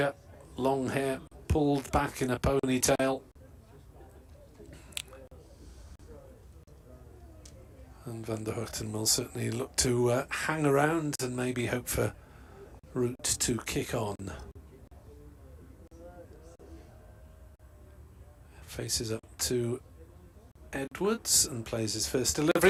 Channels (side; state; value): both; identical; correlation 1.00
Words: long hair pulled back in a ponytail. And Van der Hoogten will certainly look to hang around and maybe hope for Root to kick on. Faces up to Edwards and plays his first